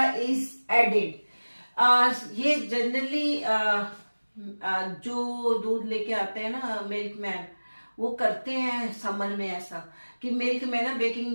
is added. ये जनरली जो दूध लेके आते हैं ना मिल्क मैन, वो करते हैं समर में ऐसा कि मिल्क में ना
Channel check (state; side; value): inverted; both; correlation -1.00